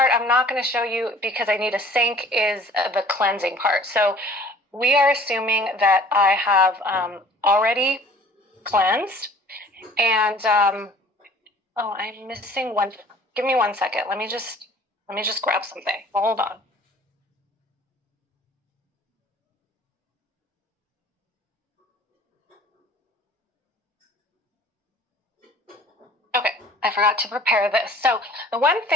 I'm not going to show you because I need a sync is the cleansing part. So we are assuming that I have already cleansed. And I'm missing one. Give me 1 second. Let me just grab something. Hold on. Okay, I forgot to prepare this. So the one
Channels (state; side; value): normal; both; correlation 0.51